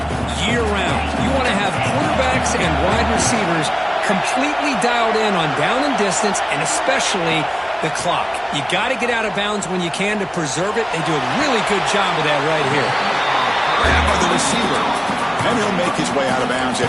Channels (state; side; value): identical; both; correlation 1.00